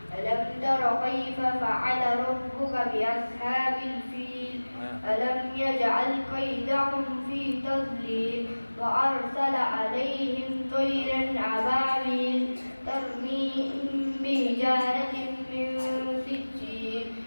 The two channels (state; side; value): inverted; both; correlation -1.00